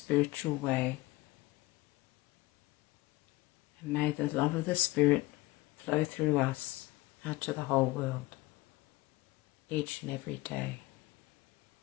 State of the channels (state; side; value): quieter; right; 20.4 dB